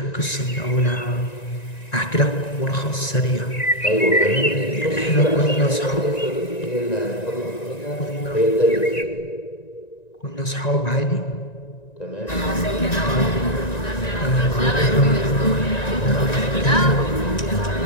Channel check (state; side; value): late; right; 1.9 ms